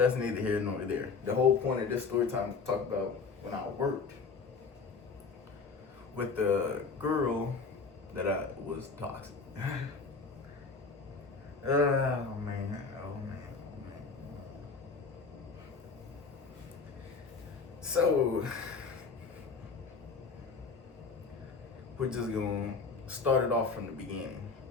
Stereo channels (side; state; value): right; quieter; 4.8 dB